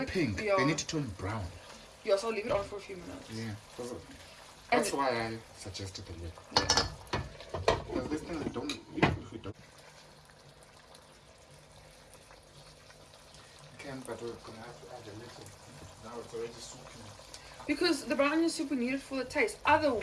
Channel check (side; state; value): both; identical; correlation 1.00